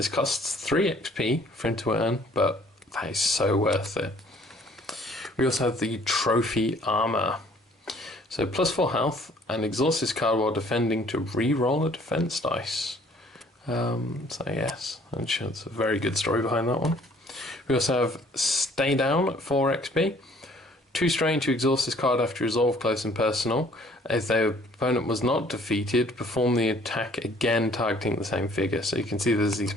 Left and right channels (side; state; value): both; normal; correlation 0.58